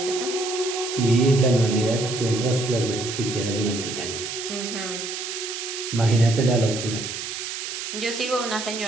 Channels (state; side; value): noise; right; hiss, 6 dB below the sound